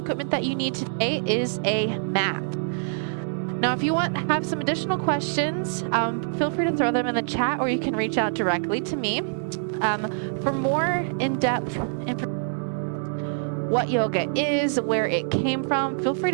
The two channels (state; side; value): silent; left; 62 dB below the other